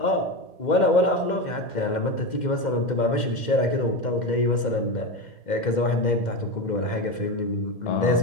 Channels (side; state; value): right; late; 2.1 ms